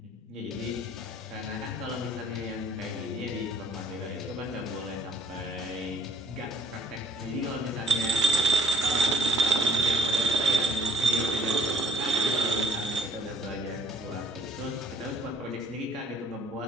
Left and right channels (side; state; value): both; normal; correlation 0.60